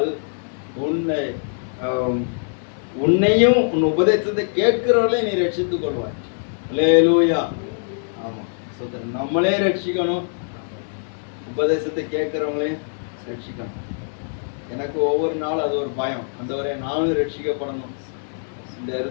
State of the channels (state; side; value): silent; right; digital silence